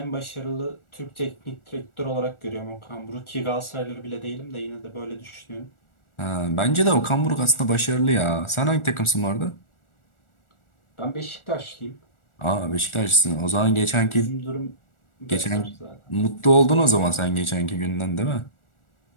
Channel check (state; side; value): late; right; 1.4 ms